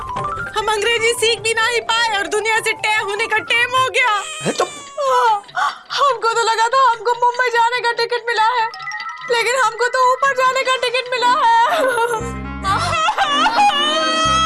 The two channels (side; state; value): both; identical; correlation 1.00